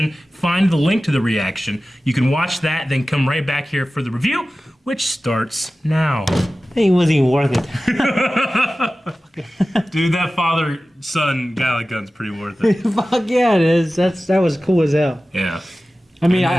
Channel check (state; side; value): normal; both; correlation 0.96